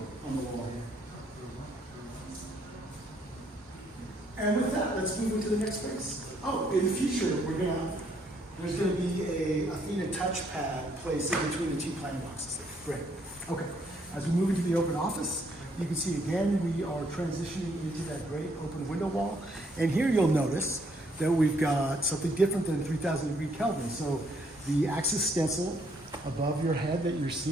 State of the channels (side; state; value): both; normal; correlation 0.69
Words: on the wall here. And with that, let's move into the next space. Oh, in the future, there's gonna be a Athena touchpad placed in between the two pine boxes. Great. Okay. As we move into the open office, you can see again we are transitioning into that great open window wall. And here you'll notice that we've got something different than 3,000 degree Kelvin. So the axis stencil above your head that you're